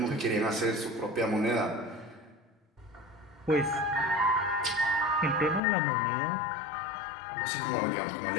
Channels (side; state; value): right; drops out; at 5.6 s